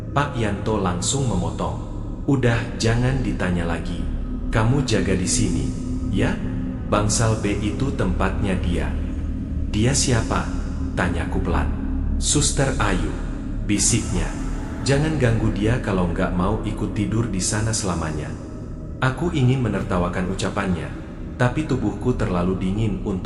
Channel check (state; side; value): identical; both; correlation 1.00